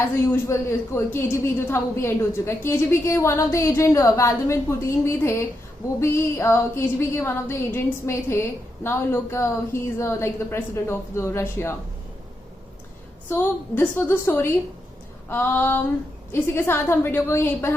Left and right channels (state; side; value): normal; both; correlation 0.83